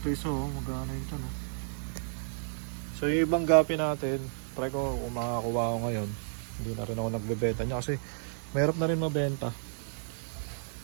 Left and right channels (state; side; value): silent; left; digital silence